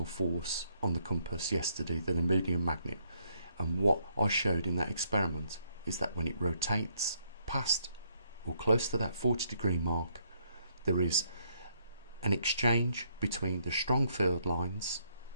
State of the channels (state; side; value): inverted; both; correlation -0.72